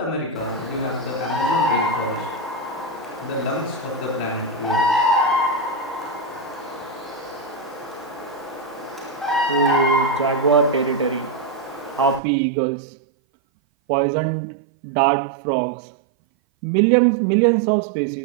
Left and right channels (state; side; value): drops out; left; at 12.2 s